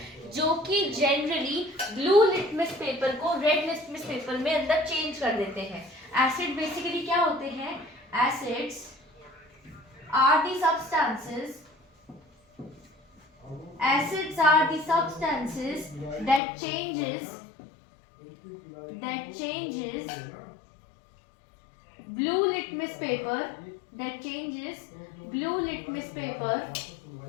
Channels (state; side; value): drops out; right; at 16.4 s